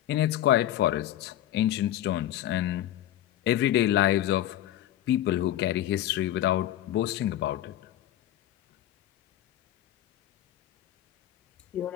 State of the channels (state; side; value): quieter; right; 12.8 dB